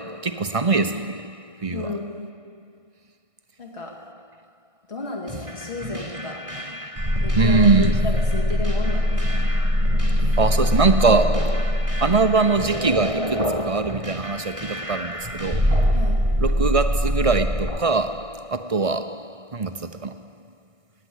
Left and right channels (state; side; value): late; left; 1.6 ms